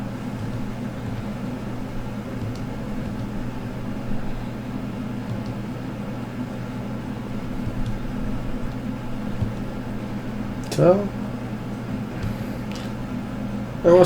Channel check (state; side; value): identical; both; correlation 1.00